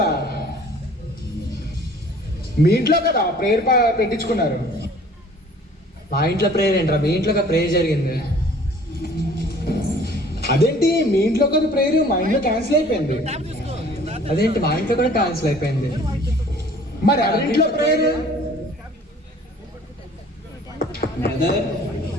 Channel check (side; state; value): both; normal; correlation 0.52